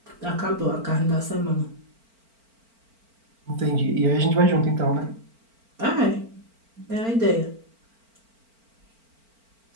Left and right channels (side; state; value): left; late; 4.4 ms